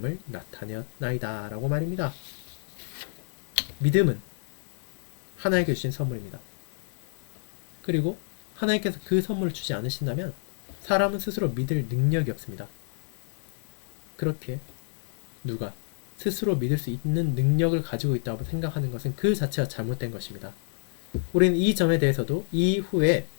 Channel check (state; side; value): silent; right; digital silence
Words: 나타내었나이다 라고 말입니다. 믿음은 하나님께 주신 선물입니다. 그리고 하나님께서 그 선물을 주지 않으신다면 사람은 스스로 믿을 능력이 없습니다. 그렇게 누가 스스로 믿을 수 있는 능력을 가지고 있다고 생각하는 것은 그 자체가 잘못된 것입니다. 우리는 이 점에 대해서도 이후에